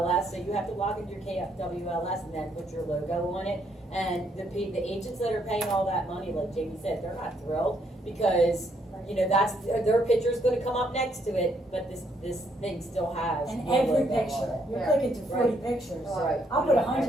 so you have to log into your KWLS and then put your logo on it. And the agents that are paying all that money, like Jamie said, they're not thrilled, because, that's, their picture's gonna come up next to it, but this thing still has. And your every logo on picture, it. you're Yeah. clicking through 40 Right. pictures. Right. I'll put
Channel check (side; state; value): both; normal; correlation 0.72